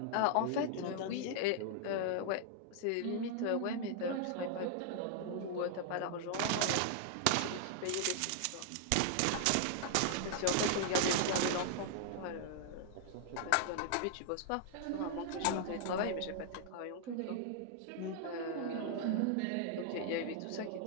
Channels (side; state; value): both; different; correlation -0.01